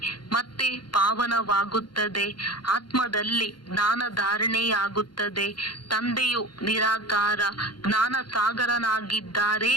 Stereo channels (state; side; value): late; right; 0.71 ms